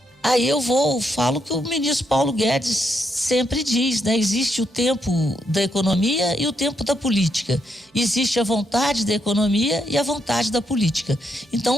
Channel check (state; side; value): normal; both; correlation 0.79